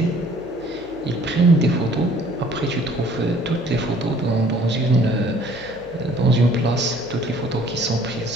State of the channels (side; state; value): both; normal; correlation 0.56